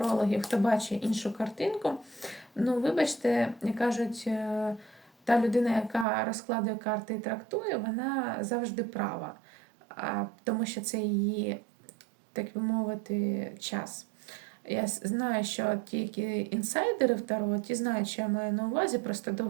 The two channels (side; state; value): left; drops out; at 6.1 s